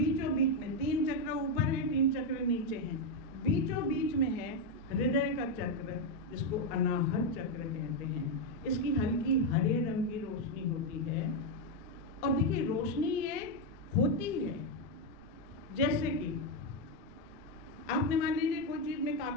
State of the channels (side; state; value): right; noise; rumble, 22 dB below the sound